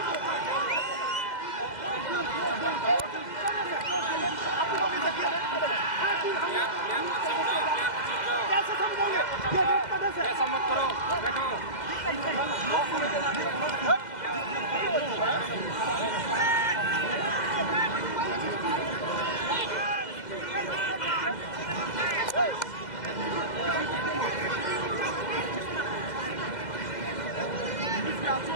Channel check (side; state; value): right; late; 2.0 ms